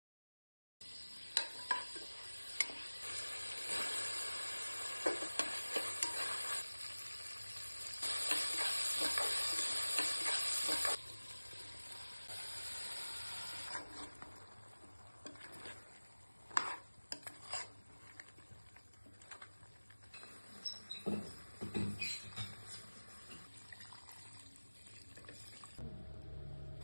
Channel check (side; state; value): both; inverted; correlation -1.00